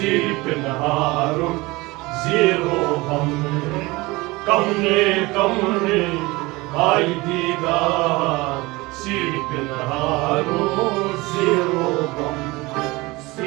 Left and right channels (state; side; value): quieter; left; 22.4 dB